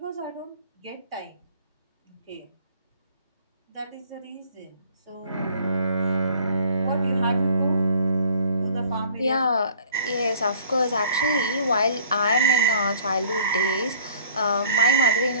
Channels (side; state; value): both; inverted; correlation -0.53